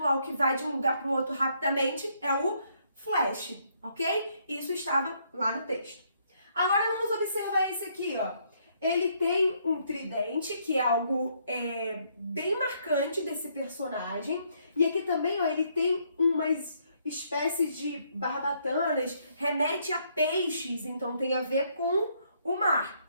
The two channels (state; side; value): inverted; both; correlation -0.71